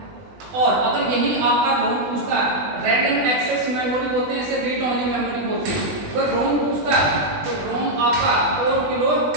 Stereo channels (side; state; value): left; late; 20 ms